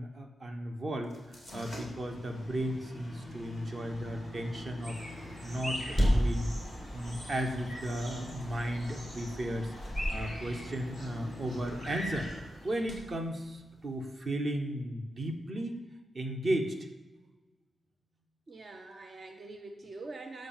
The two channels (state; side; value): normal; both; correlation 0.90